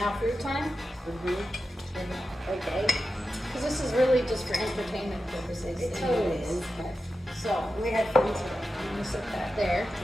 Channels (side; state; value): both; normal; correlation 0.91